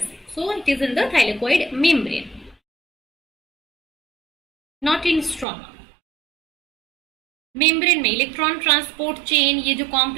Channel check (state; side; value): drops out; left; at 5.5 s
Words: so it is in the thylakoid membrane, not in stroma. Membrane में इलेक्ट्रॉन ट्रांसपोर्ट चेन, ये जो